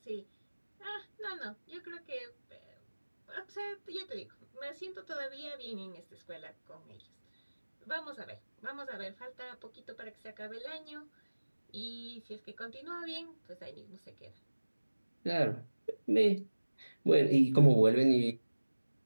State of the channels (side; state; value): both; inverted; correlation -1.00